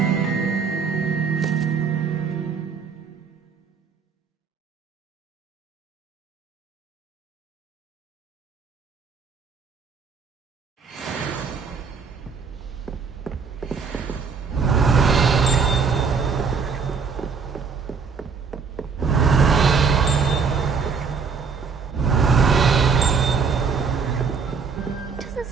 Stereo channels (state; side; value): quieter; left; 5.5 dB